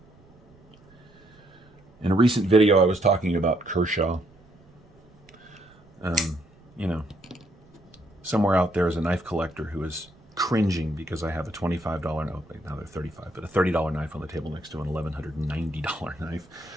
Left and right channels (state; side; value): noise; right; rumble, 28 dB below the sound